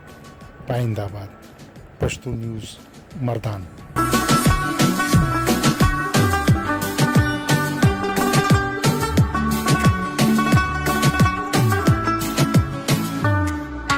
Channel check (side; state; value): both; identical; correlation 1.00